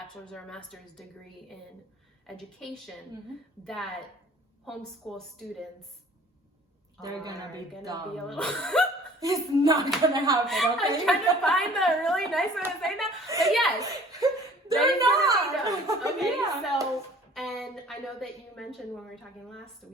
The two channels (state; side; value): normal; both; correlation 0.51